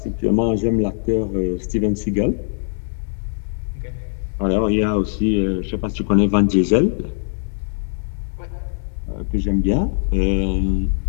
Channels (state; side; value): silent; right; digital silence